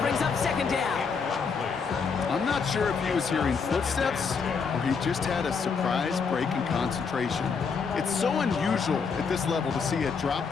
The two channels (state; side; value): quieter; right; 5.5 dB